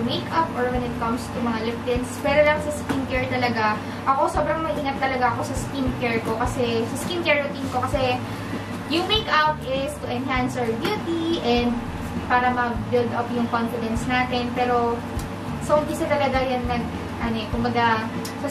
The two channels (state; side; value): identical; both; correlation 1.00